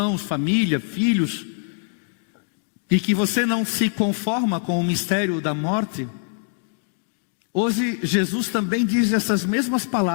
família, filhos. E que você não se conforma com o mistério da morte. Hoje Jesus também diz essas mesmas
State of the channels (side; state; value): right; silent; 61 dB below the other